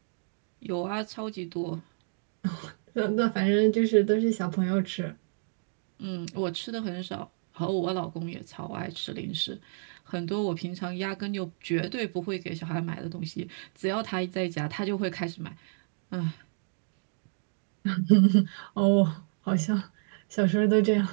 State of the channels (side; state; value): left; silent; 58 dB below the other